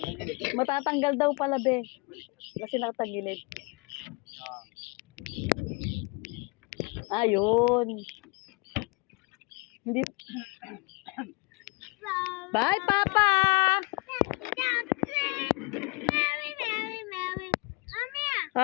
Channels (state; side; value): quieter; right; 27.8 dB